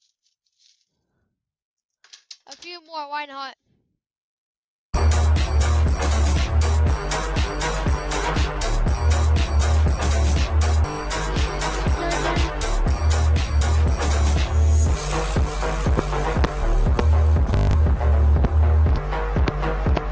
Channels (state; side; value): identical; both; correlation 1.00